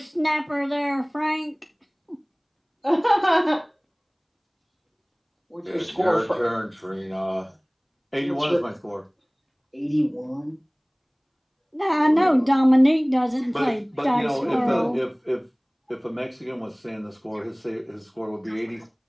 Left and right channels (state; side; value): identical; both; correlation 1.00